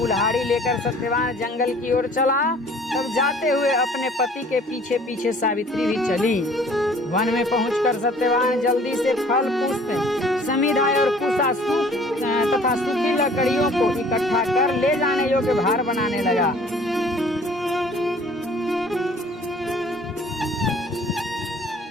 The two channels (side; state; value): both; normal; correlation 0.52